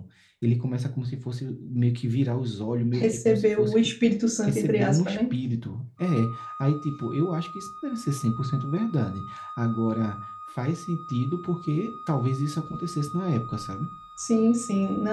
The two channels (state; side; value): identical; both; correlation 1.00